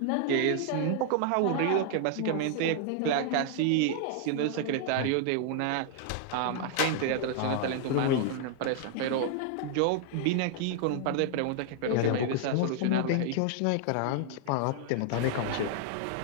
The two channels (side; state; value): both; different; correlation -0.01